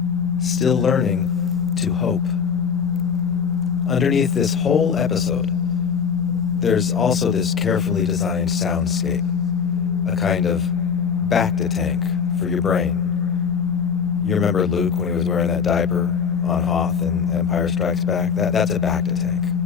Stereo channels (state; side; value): quieter; right; 6.5 dB